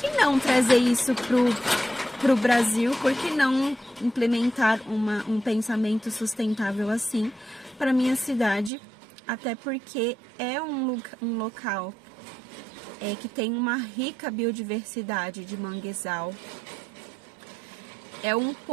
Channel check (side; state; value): left; drops out; at 8.7 s